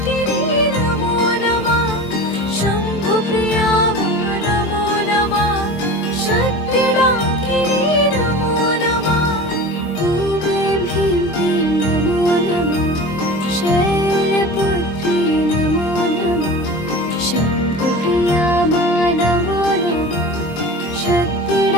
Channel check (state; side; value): late; right; 23 ms